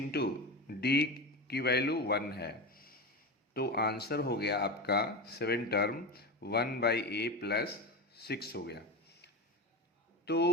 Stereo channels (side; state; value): both; normal; correlation 0.22